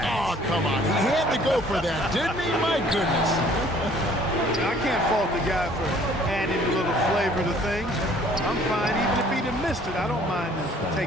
Oh, come on. He had to go for that, didn't he? My goodness. I can't fault the guy for adding a little flavor to things. I'm fine. Even if he'd have missed it, I don't mind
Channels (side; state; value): both; normal; correlation 0.56